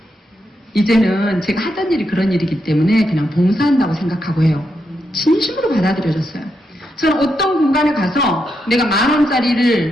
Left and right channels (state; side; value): normal; both; correlation 0.83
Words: 이제는 제가 하던 일이 그런 일이기 때문에 그냥 봉사한다고 생각하고 해요. 진심으로 받아들여졌어요. 저는 어떤 공간에 가서 내가